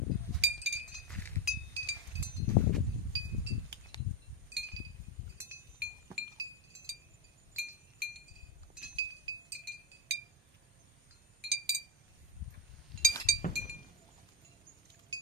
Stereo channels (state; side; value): normal; both; correlation 0.10